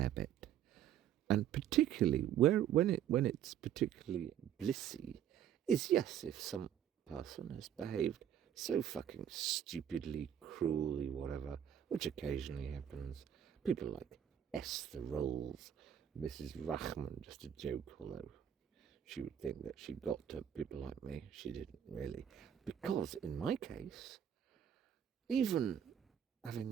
bit. And particularly when it's particularly blissy is, yes, if some person has behaved so fucking stupidly, cruelly, whatever, which occasionally happens. People like Esther Rolls, Mrs. Rachman, just a joke, although she would think that she got to people like me. She didn't really. Because in my case, even having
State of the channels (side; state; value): left; quieter; 9.8 dB